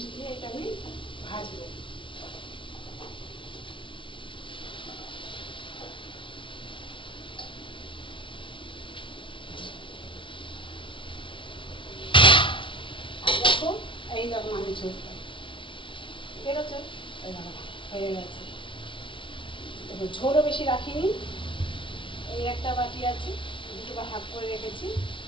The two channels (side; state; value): right; late; 0.25 ms